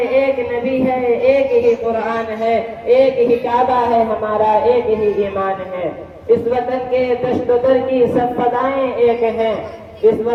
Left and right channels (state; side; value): identical; both; correlation 1.00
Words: ایک نبی ہے، ایک ہی قرآن ہے، ایک ہی کعبہ ہے ہمارا، ایک ہی ایمان ہے۔ اس وطن کے دشت و در کی سب فضائیں ایک ہیں، اس